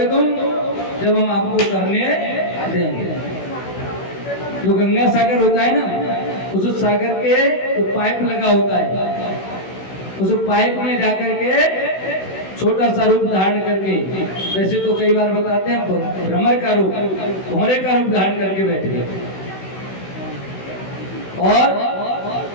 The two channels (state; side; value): late; right; 16 ms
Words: तुम जब हम आपको करने देंगे। जो गंगा सागर होता है ना, उस सागर के जो पाइप लगा होता है, उस पाइप में जाकर के छोटा सा रूप धारण करके, वैसे तो कई बार बताते हैं भ्रमर का रूप, भौरे का रूप धारण करके बैठ गए। और